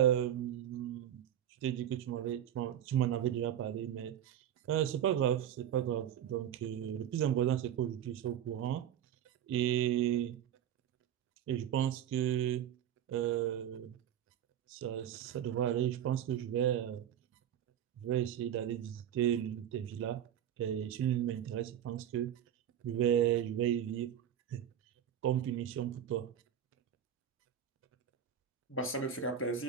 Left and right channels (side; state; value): left; quieter; 10.1 dB